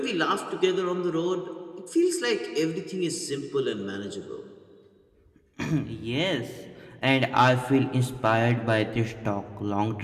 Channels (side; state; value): both; identical; correlation 1.00